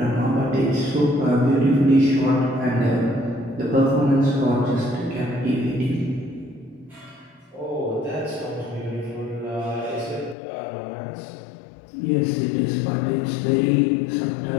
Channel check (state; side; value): drops out; right; at 10.4 s